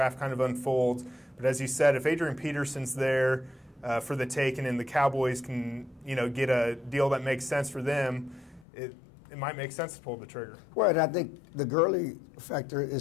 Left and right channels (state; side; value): drops out; right; at 8.7 s